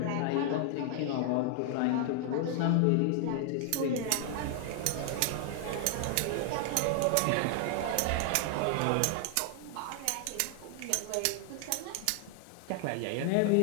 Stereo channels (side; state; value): both; different; correlation 0.00